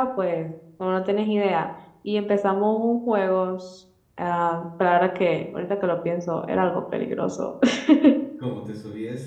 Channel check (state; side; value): identical; both; correlation 1.00